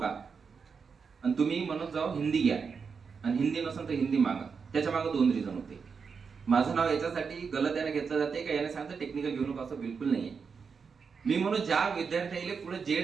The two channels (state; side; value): quieter; left; 5.7 dB